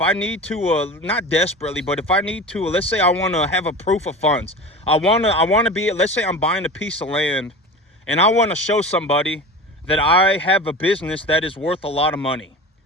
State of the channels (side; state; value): both; normal; correlation 0.32